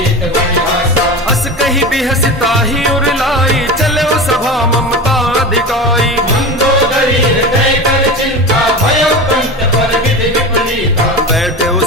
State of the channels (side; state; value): both; normal; correlation 0.28